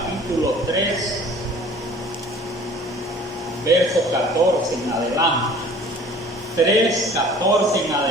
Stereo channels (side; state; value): both; normal; correlation 0.48